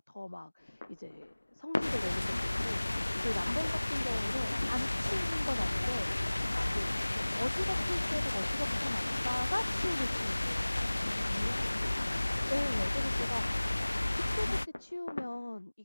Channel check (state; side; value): inverted; both; correlation -1.00